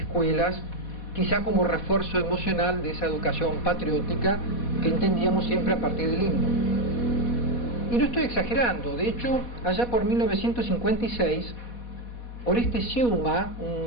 quizá como refuerzo emocional de esa educación patriótica que entendíamos siempre a partir del himno. Y no estoy exagerando, de hecho, allá por 1956, Oreste Sciuma,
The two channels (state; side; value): late; right; 4.1 ms